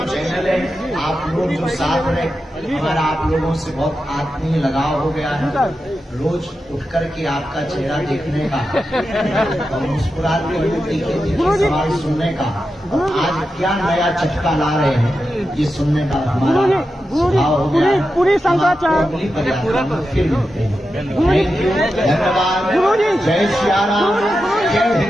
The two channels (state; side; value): normal; both; correlation 0.90